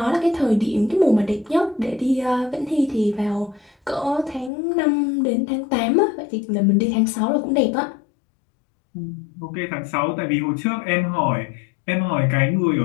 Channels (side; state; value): right; drops out; at 4.5 s